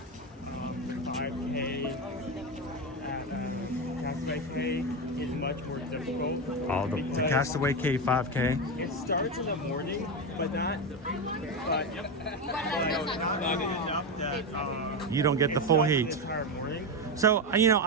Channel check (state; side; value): normal; both; correlation 0.13